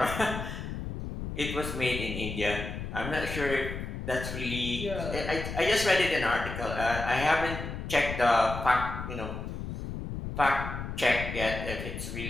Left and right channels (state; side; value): noise; left; rumble, 6 dB below the sound